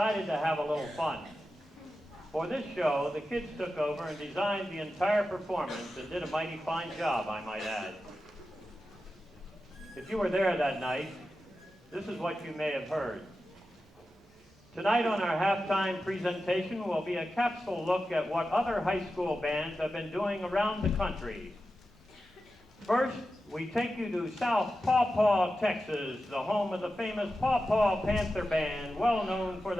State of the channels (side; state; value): both; normal; correlation 0.92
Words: to have a little fun. For this show, the kids took over and designed the entire performance and did a mighty fine job, I might add. If you were there that night, this is what you may have heard. Tonight on our halftime presentation will be a capsule look at what other high school bands have been doing around the country. First, we take you to South Paw Paw, Texas, the home of the famous Paw Paw Panther Band, well known for